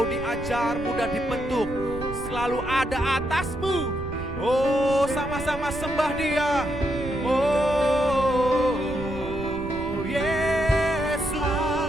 diajar, mudah dibentuk, selalu ada atasmu. Sama-sama sembah Dia. Yesus,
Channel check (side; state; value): right; noise; rumble, 11 dB below the sound